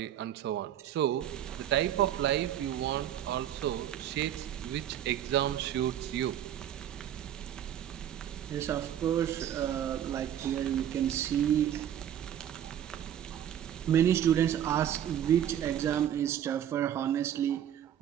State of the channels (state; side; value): quieter; left; 10.5 dB